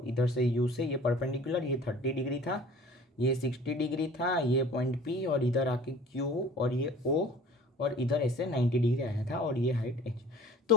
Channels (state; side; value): normal; both; correlation 0.47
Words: इधर से यू से ये परपेंडिकुलर, ये 30 डिग्री था, ये 60 डिग्री था, ये पॉइंट पी और इधर आके क्यू और ये ओ और इधर ऐसे 90 डिग्री आया था और ये हाइट एच।